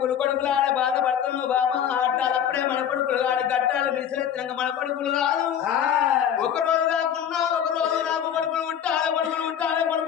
కొడుకులాడ బాధపడుతున్నావు బామా ఆటాలప్పుడే మన కొడుకులు ఆడ గట్టాలు విసిరెత్తినాక మన కొడుకులు కాదు ఒక రోజు కాకున్నా ఒక రోజు నాకు కొడుకులు ఉంటాలి కొడుకులు ఉంటాలి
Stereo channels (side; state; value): right; quieter; 9.2 dB